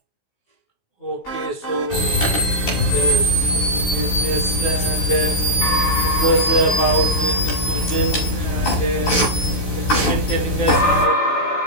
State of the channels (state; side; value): late; right; 16 ms